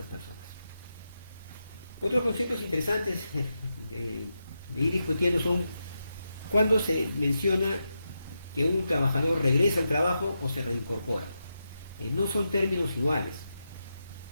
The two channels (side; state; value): both; inverted; correlation -0.87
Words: personas. Otros conceptos interesantes de ir discutiendo son cuando se menciona que un trabajador regresa al trabajo o se reincorpora. No son términos iguales.